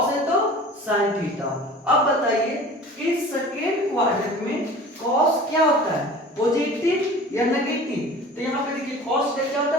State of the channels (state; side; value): normal; both; correlation 0.41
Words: है तो साइन थीटा। अब बताइए कि सेकेंड क्वाड्रेंट में कॉस क्या होता है, पॉजिटिव या नेगेटिव, तो यहाँ पे देखिए कॉस क्या होता